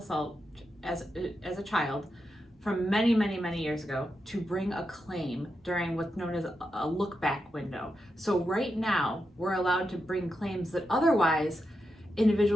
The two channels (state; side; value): normal; both; correlation 0.87